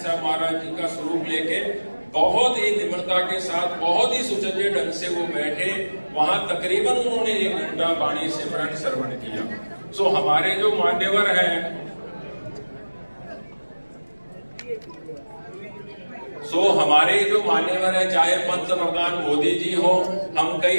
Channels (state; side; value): inverted; both; correlation -1.00